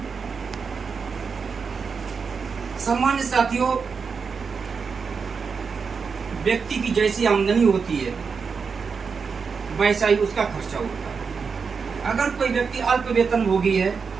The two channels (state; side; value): quieter; left; 5.5 dB